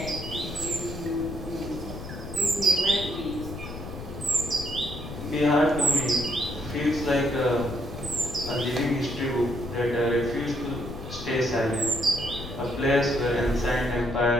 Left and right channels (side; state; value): left; noise; rumble, 10 dB below the sound